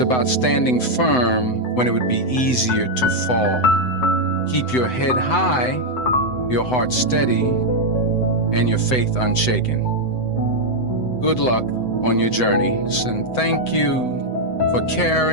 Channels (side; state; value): right; late; 7.9 ms